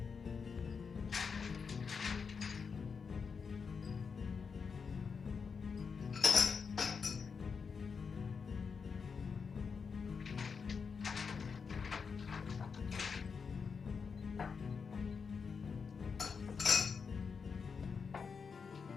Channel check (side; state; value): right; quieter; 5.7 dB